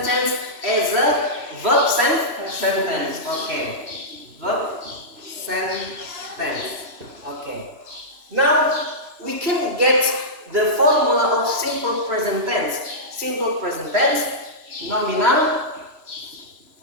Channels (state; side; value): late; left; 3.0 ms